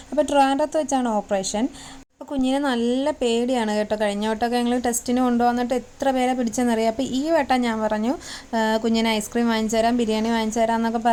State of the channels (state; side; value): identical; both; correlation 1.00